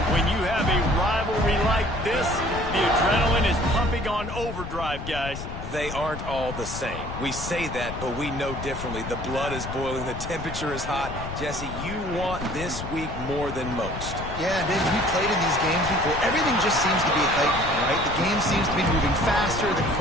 when you have a rivalry like this, the adrenaline is pumping on overdrive, guys. They aren't all the same. We say that, but we know differently. The blood is boiling. The temperature is hot. Jesse, you want this week more than most. Yeah, David, we played in these games before. Everything just seems to be heightened, right? The game seems to be moving faster. The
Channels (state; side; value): noise; left; rumble, 8 dB below the sound